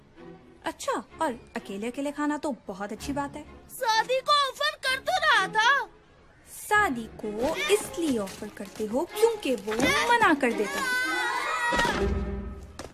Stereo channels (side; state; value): both; identical; correlation 1.00